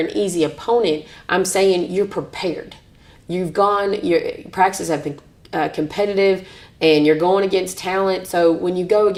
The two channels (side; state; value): both; identical; correlation 1.00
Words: easy opponent. I'm saying you're prepared. Your practices have been competitive, and you're going against talent. So when you go